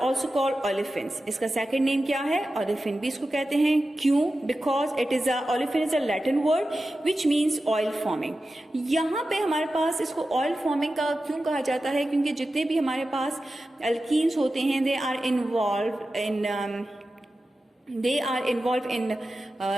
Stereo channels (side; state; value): both; normal; correlation 0.93